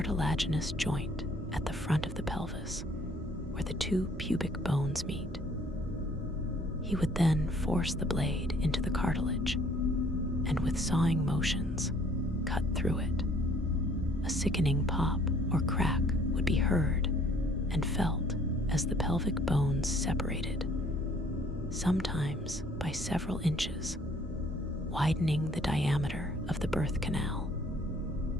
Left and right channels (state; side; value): normal; both; correlation 0.59